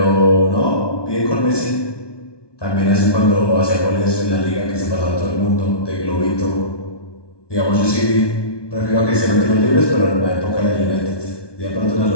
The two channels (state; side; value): late; right; 1.2 ms